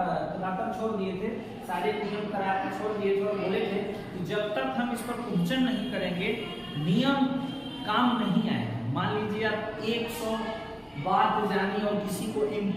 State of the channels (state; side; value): identical; both; correlation 1.00